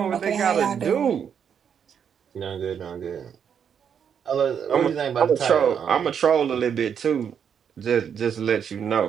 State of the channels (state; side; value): quieter; left; 7.7 dB